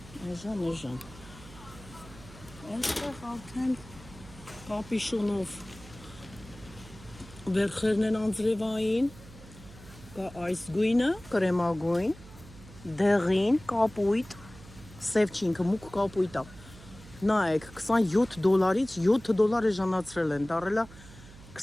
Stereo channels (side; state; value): right; noise; hum, 19 dB below the sound